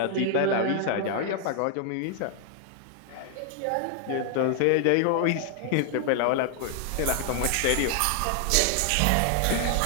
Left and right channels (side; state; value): both; different; correlation 0.00